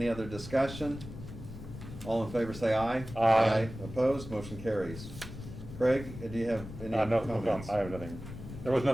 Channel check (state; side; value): noise; left; rumble, 12 dB below the sound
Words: other discussion? All in favor say aye. Aye. Opposed? Motion carries. Craig, do you have any No, comments? I have nothing. There was